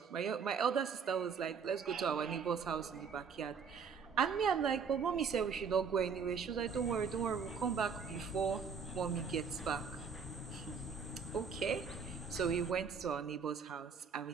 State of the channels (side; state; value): left; quieter; 6.0 dB